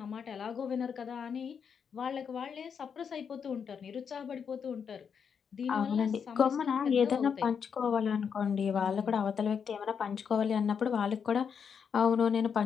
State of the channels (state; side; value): quieter; right; 6.9 dB